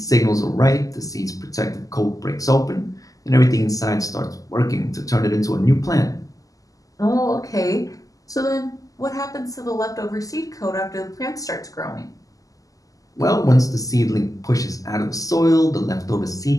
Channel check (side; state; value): right; late; 0.17 ms